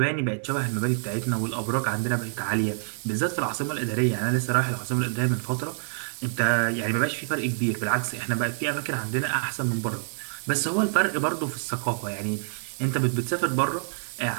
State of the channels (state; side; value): silent; left; 60 dB below the other